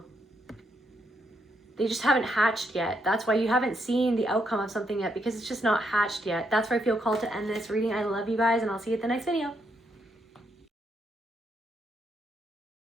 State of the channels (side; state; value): both; normal; correlation 0.78